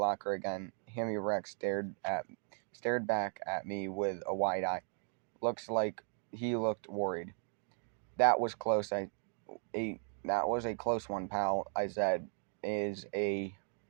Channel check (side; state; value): left; silent; 53 dB below the other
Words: again. Hammy Rex stared back at me with a wide eye. Looks like he looked worried. That was close. That was a close one, pal, I said,